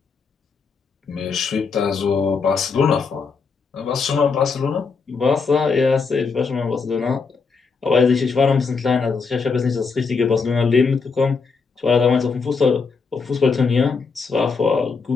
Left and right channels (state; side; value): quieter; right; 5.0 dB